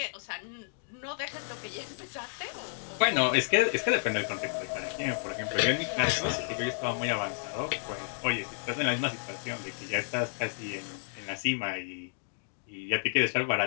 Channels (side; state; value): right; silent; digital silence